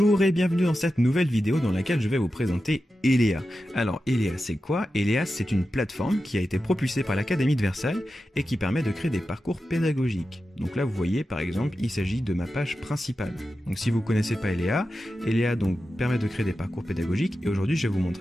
et bienvenue dans cette nouvelle vidéo dans laquelle je vais vous présenter Elea. Alors Elea c'est quoi? Elea c'est une plateforme qui a été propulsée par l'Académie de Versailles et qui permet de créer des parcours pédagogiques. Donc là vous voyez par exemple il s'agit de ma page principale. Donc si vous ne connaissez pas Elea, Elea donc permet de créer des parcours pédagogiques et aujourd'hui je vais vous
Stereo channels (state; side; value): normal; both; correlation 0.92